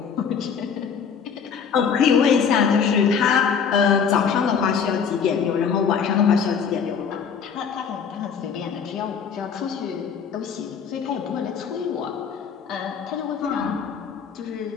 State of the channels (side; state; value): right; quieter; 6.7 dB